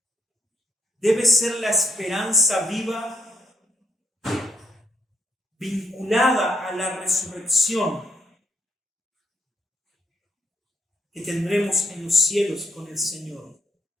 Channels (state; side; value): normal; both; correlation 0.74